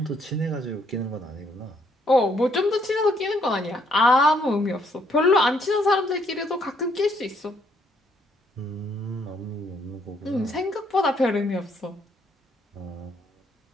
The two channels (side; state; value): both; normal; correlation 0.69